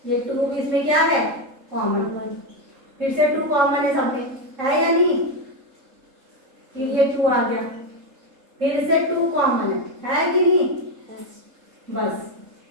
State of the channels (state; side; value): late; left; 3.7 ms